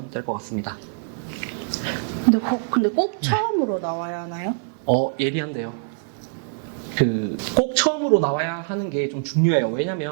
될 것 같습니다. 근데 꼭 처음으로 나와야 하나요? 예리한데요. 꼭 처음으로 나와야 하는 게 좀 중요해요.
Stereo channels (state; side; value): silent; left; 55 dB below the other